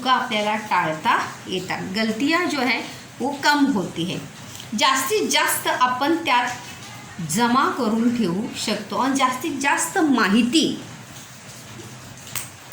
आपल्याला टाळता येतात, गलतियाँ जो है वो कम होती है। जास्तीत जास्त आपण त्यात जमा करून ठेवू शकतो आणि जास्तीत जास्त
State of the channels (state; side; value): identical; both; correlation 1.00